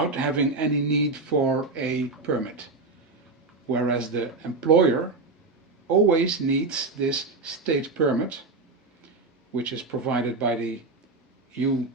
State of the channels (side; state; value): left; quieter; 3.6 dB